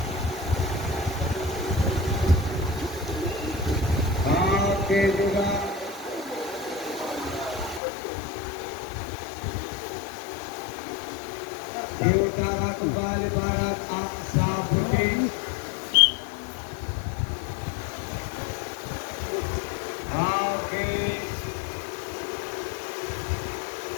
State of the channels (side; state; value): right; drops out; at 7.8 s